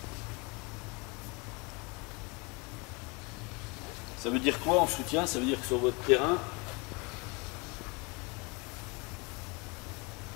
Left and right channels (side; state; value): right; quieter; 28.8 dB